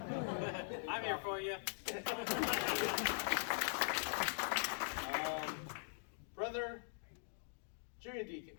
I'm here for you. Brother Junior Deacon.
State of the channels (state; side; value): silent; right; digital silence